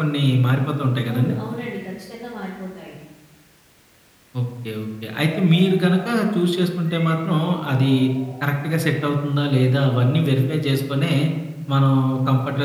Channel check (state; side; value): identical; both; correlation 1.00